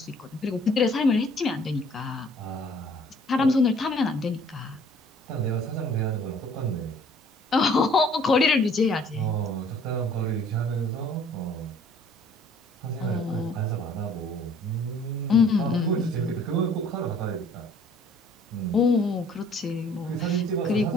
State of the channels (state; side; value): normal; both; correlation 0.56